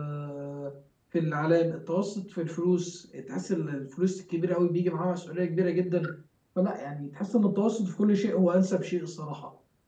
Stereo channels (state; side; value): identical; both; correlation 1.00